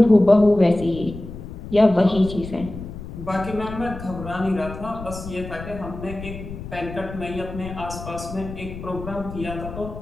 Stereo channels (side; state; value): left; noise; rumble, 11 dB below the sound